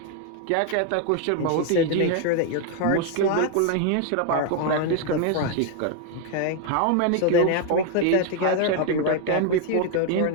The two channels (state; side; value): different; both; correlation 0.00